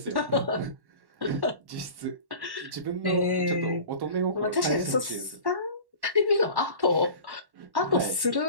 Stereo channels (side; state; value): left; late; 1.1 ms